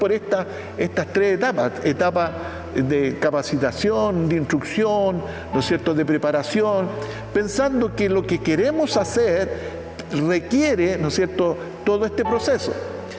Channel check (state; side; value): identical; both; correlation 1.00